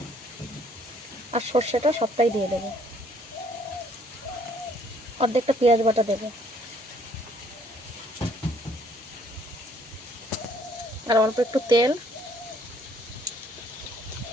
আর সর্ষেটা সবটাই দিয়ে দেবো। অর্ধেকটা পেঁয়াজ বাটা দেবো, আর অল্প একটু তেল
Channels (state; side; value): normal; both; correlation 0.63